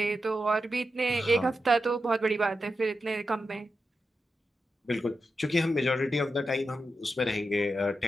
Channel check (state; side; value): normal; both; correlation 0.89